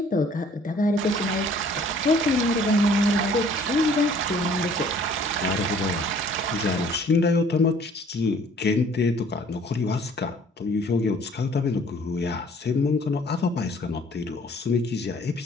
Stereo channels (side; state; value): both; normal; correlation 0.56